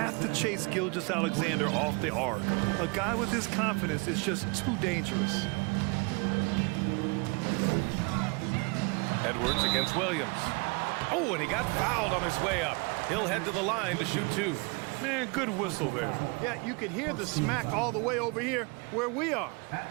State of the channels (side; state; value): left; quieter; 30.1 dB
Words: to chase Gilgeous-Alexander off the arc. A guy with his confidence is just too dangerous. Edwards against Williams. Oh, and he got fouled on his way up. He'll head to the line to shoot two. Man, good whistle there. Yeah, you could hear the smack all the way over here where we are.